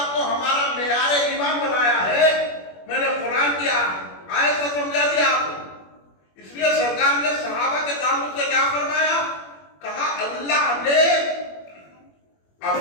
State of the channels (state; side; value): late; right; 21 ms